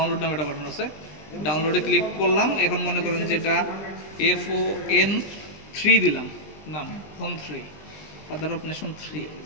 নামে একটা বাটন আছে, ডাউনলোডে ক্লিক করলাম। এখন মনে করেন যে এটা FON3 দিলাম নাম, ফোন 3, ফাদার অফ নেশন 3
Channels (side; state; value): right; late; 20 ms